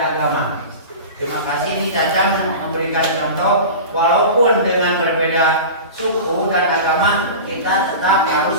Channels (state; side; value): inverted; both; correlation -0.31